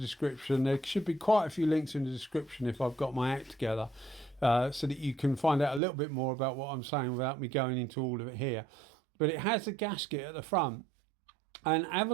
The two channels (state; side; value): drops out; left; at 5.8 s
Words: There should be quite a few links in the description if I've got my act together, so that you can find out a little bit more about what I'm saying without me going into all of it here. But it has a gasket at the front, and